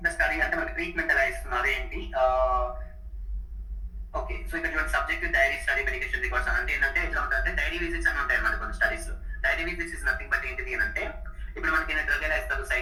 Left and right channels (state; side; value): identical; both; correlation 1.00